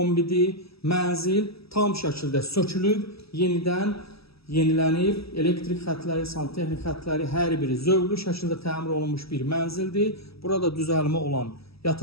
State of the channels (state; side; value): late; right; 0.77 ms